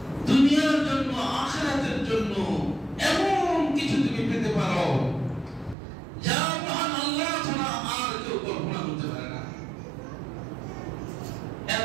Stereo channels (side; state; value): left; drops out; at 5.8 s